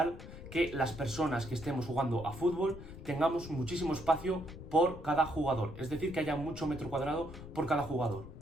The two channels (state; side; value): noise; left; rumble, 13 dB below the sound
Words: que las personas que estemos jugando a fútbol tengamos muchísimo espacio por cada jugador. Es decir, que haya mucho metro cuadrado por cada jugador.